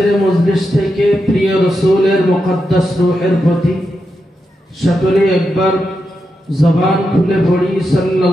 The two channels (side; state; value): both; normal; correlation 0.87